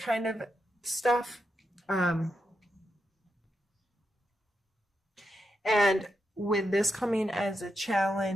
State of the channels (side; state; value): both; normal; correlation 0.85